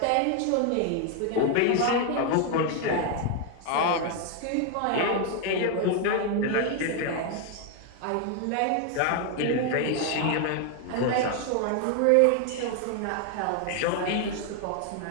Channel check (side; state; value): both; different; correlation 0.01